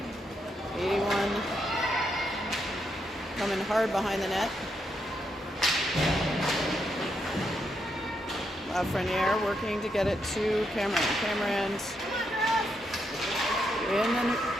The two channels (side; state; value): both; normal; correlation 0.80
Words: 81 coming hard behind the net. Lafreniere working to get it to Cameron. Cameron's in, and